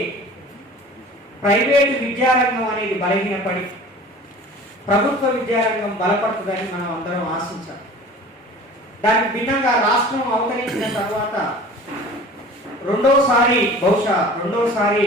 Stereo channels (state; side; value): normal; both; correlation 0.43